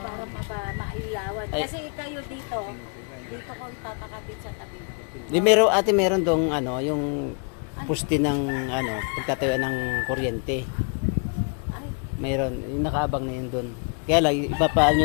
maiyawan. Kasi kayo dito ko papakabit sa tabi. Di meron ate, meron dong ano, yung poste ng ano, pagtatayo ng kuryente. Meron, yung nakaabang na yun doon. Kaya lang, ipapaan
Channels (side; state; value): right; quieter; 38.3 dB